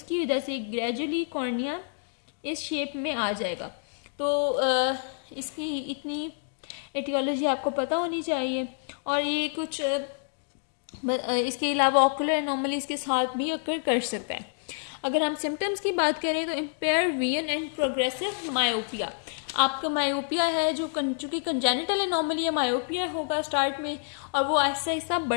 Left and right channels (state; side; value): silent; right; digital silence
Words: वजह से ग्रेजुअली कॉर्निया इस शेप में आ जाएगा। तो इसकी इतनी एटियोलॉजी आपको पता होनी चाहिए। और ये कुछ इसके अलावा ऑकुलर एनोमलीज के साथ भी अकर कर सकता है। अगर हम सिम्टम्स की बात करें तो empire vision and progressive myopia. आपका मायोपिया है जो चूँकि कंजेनिटल एनोमली है, मायोपिया होगा स्टार्ट में और वो आहिस्ता आहिस्ता